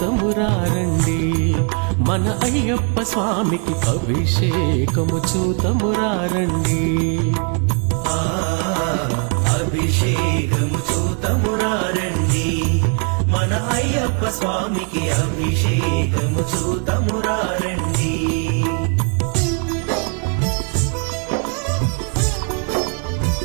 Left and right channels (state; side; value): quieter; left; 38.9 dB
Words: మన అయ్యప్ప స్వామికి, అభిషేకము చూతమురారండి. అభిషేకము చూతమురారండి మన అయ్యప్ప స్వామికి, అభిషేకము చూతమురారండి.